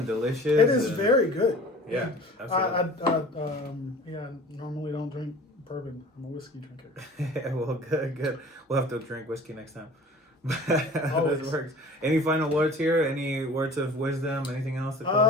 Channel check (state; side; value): normal; both; correlation 0.44